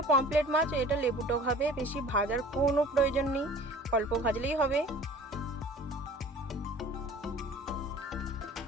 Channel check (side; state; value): both; normal; correlation 0.45